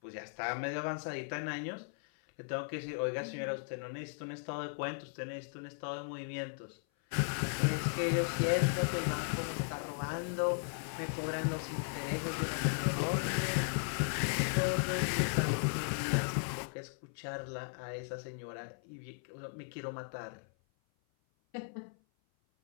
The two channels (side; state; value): right; silent; 53 dB below the other